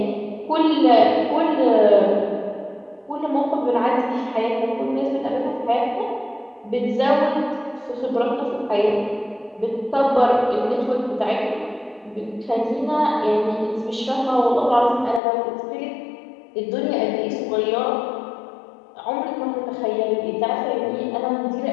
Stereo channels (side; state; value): right; drops out; at 15.2 s